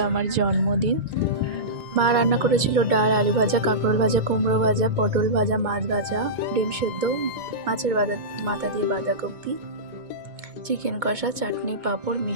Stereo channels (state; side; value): late; left; 2.2 ms